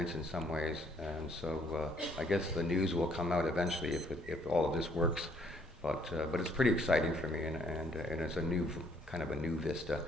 in some ways. And so I guess the news will come out eventually if all of this works. But it's pretty exciting for me, and it's a new kind of a new vista.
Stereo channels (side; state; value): both; normal; correlation 0.65